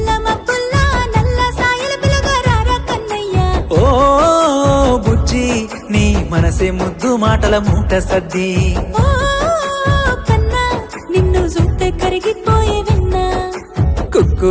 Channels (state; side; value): identical; both; correlation 1.00